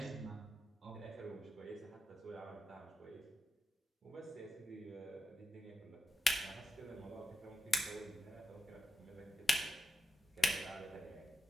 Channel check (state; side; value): normal; both; correlation 0.89